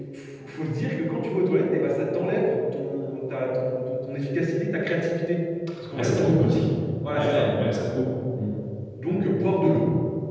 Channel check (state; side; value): identical; both; correlation 1.00